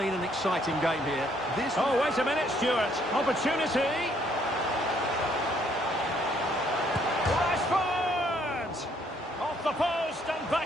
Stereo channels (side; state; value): both; normal; correlation 0.67